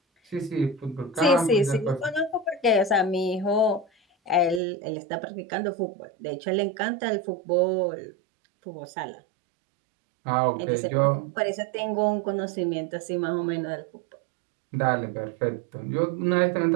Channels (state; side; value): drops out; left; at 4.6 s